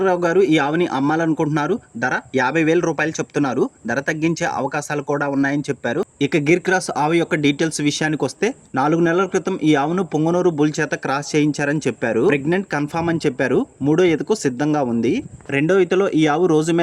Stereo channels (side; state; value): both; identical; correlation 1.00